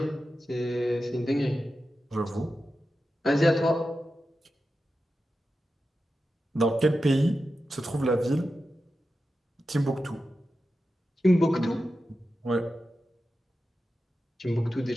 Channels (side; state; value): both; normal; correlation 0.91